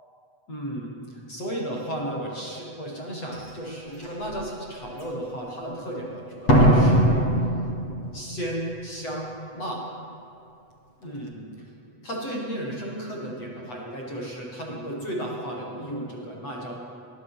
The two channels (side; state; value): right; late; 8.0 ms